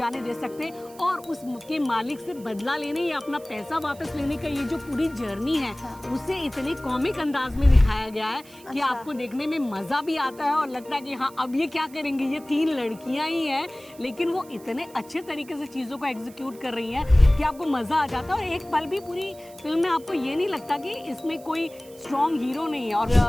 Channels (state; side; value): noise; right; hiss, 23 dB below the sound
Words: दे सकते। और उसके मालिक से बदला लेने या अपना पैसा वापस लेने का ये जो पूरी जर्नी है उसे इतने कॉमिक अंदाज में दिखाया गया है कि आपको देखने में मज़ा भी आता है और लगता है कि हाँ अब ये क्या करेंगी। ये तीन लड़कियां ही हैं लेकिन वो इतने अच्छे तरीके से चीज़ों को एग्जीक्यूट कर रही हैं कि आपको मज़ा आ जाता है और एक पल भी पूरी फिल्म में आपको ये नहीं लगता कि इसमें कोई स्ट्रॉन्ग हीरो नहीं है। और